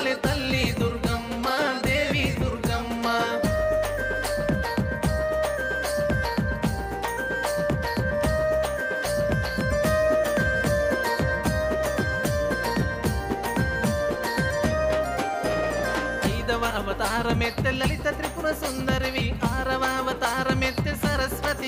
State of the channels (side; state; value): both; identical; correlation 1.00